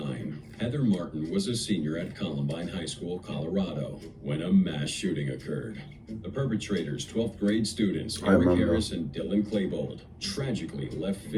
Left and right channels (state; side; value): identical; both; correlation 1.00